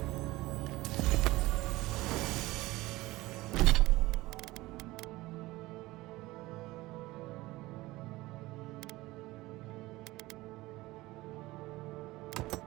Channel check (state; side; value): quieter; left; 19.1 dB